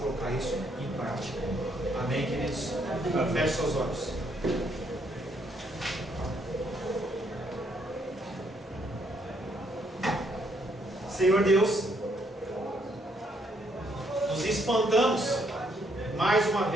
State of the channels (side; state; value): both; normal; correlation 0.71